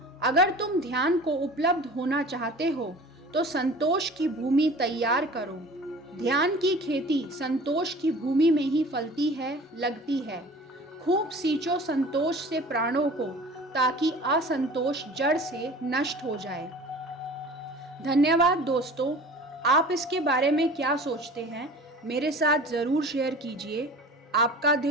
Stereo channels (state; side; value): normal; both; correlation 0.42